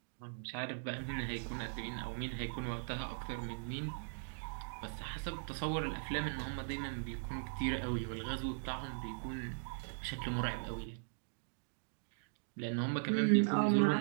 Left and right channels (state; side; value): silent; left; digital silence